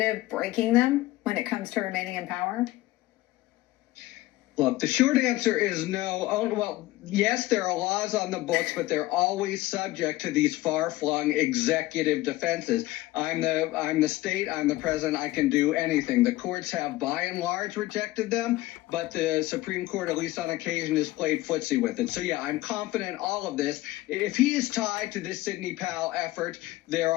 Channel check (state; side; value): quieter; right; 17.7 dB